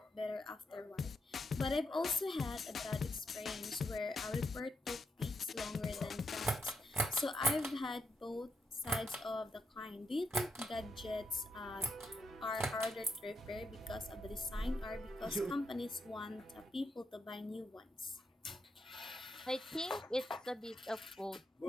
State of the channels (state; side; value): normal; both; correlation 0.82